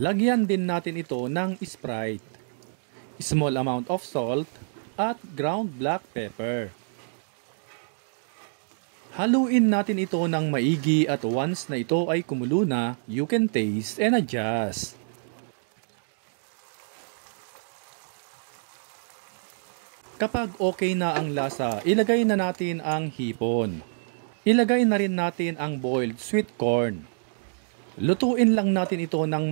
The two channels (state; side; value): silent; left; digital silence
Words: din natin ito ng Sprite, small amount of salt, at ground black pepper. Haluin natin ito ng maigi at once na ito ay kumulo na, you can taste and adjust. Kapag okay na ang lasa, ilagay na natin ang hipon. Ilagay na rin natin ang boiled sweet corn. Lutuin lang natin ito ng